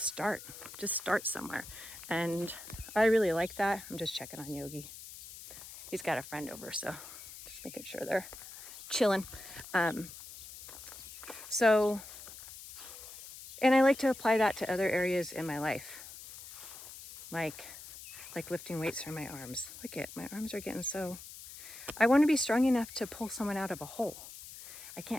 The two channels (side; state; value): left; noise; hiss, 14 dB below the sound